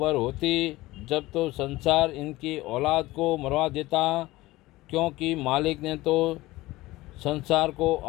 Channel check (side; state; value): right; quieter; 18.6 dB